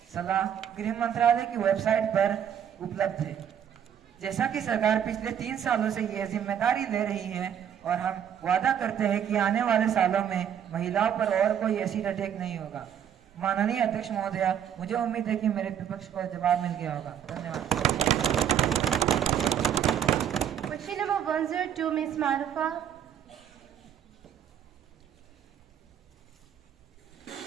सलाह गृह मंत्रालय की वेबसाइट पर उपलब्ध है। जैसा कि सरकार पिछले 3 सालों से यह जिम्मेदारी ले रही है और हम वादा करते हैं कि आने वाले सालों में महिलाओं पर और कोई एसिड अटैक नहीं होगा। माननीय अध्यक्ष महोदया, मुझे उम्मीद है कि मेरे विपक्ष को जवाब मिल गया होगा। धन्यवाद। Question number 102, Ms. Marufa.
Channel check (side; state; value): left; quieter; 9.1 dB